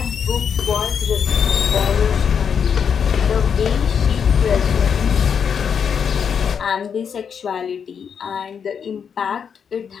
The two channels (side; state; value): right; quieter; 7.1 dB